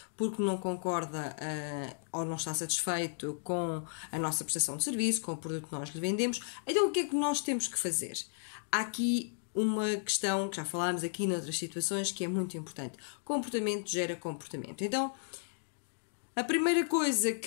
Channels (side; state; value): right; silent; digital silence